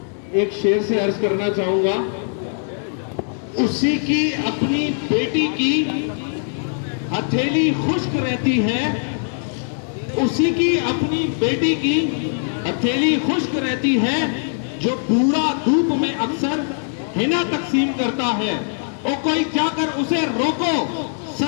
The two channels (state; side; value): silent; right; digital silence